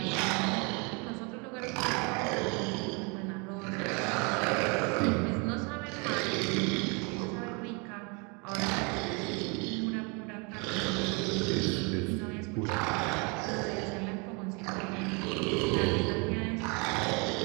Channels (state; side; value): quieter; left; 31.6 dB